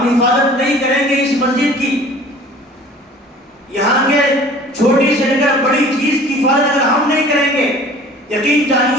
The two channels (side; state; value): both; normal; correlation 0.47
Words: حفاظت نہیں کریں گے اس مسجد کی، یہاں کے چھوٹی سے لے کر بڑی چیز کی حفاظت اگر ہم نہیں کریں گے، یقین